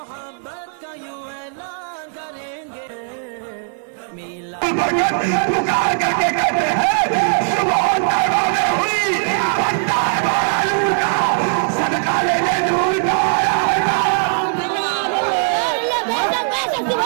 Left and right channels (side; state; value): left; silent; 67 dB below the other